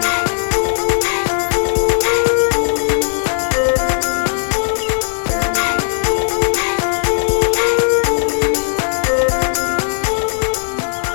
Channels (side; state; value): right; silent; digital silence